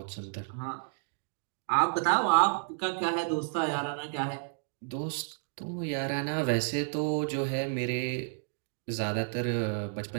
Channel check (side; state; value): left; silent; digital silence